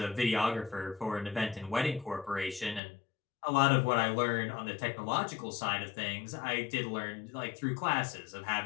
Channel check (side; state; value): right; drops out; at 2.8 s